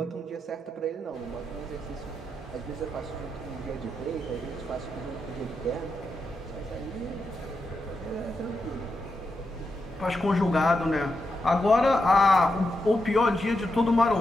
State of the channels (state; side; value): normal; both; correlation 0.86